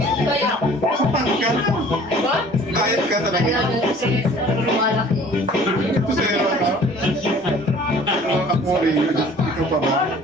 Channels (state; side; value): normal; both; correlation 0.50